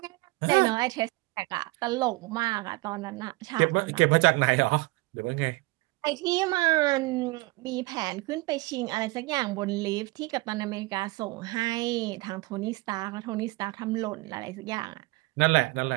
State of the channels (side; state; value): left; quieter; 22.9 dB